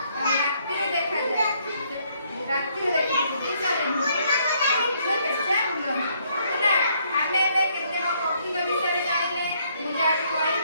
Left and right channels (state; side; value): inverted; both; correlation -0.69